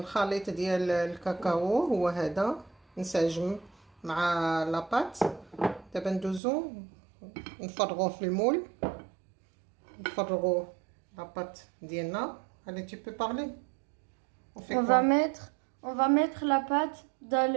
ديال الكاكاو هو هذا نسجم مع لاباط. دابا ندوزو نفرغوه في المول نفرغو لاباط ديالنا. Allez, tu peux parler. On fait On quoi? va mettre la pâte dans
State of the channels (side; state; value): left; drops out; at 6.4 s